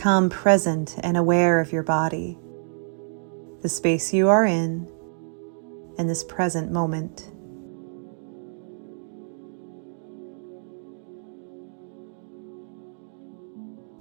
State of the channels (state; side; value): silent; left; digital silence